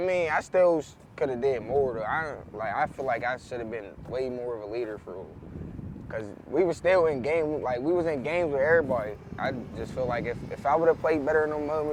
I still could have did more though. I feel like I should have been way more of a leader for real. Cause we were still in game, like we was in games with everybody. I just feel like if I would have played better in those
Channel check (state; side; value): identical; both; correlation 1.00